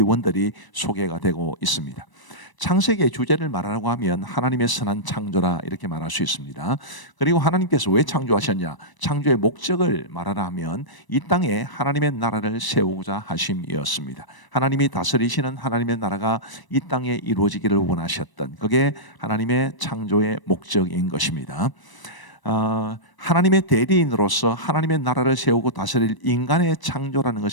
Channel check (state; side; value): late; right; 1.0 ms